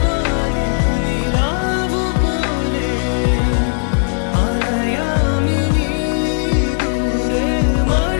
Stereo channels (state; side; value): silent; right; digital silence